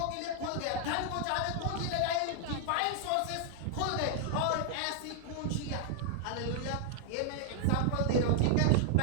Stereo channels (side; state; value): both; different; correlation 0.00